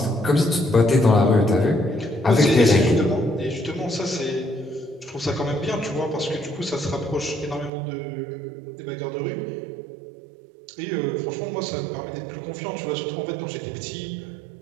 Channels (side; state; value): left; drops out; at 7.7 s